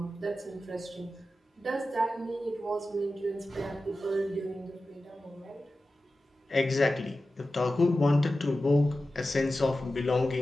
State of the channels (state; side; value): normal; both; correlation 0.94